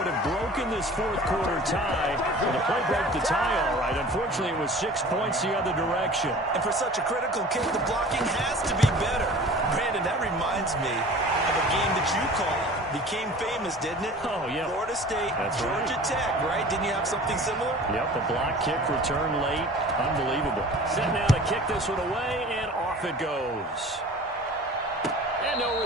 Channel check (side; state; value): both; normal; correlation 0.43